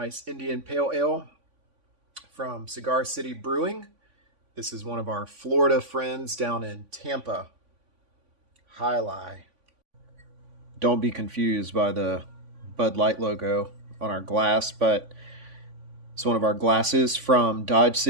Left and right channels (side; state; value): left; late; 3.5 ms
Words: Indian Pale Ale from Cigar City Brewing. This is one of our Florida friends down in Tampa. Hi-Lai. Don't be confused by the Bud Light logo on our glass, but it's one of our glasses from Dodge